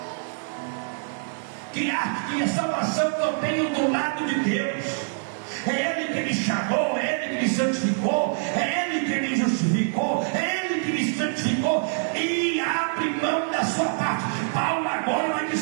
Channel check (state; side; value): silent; left; 62 dB below the other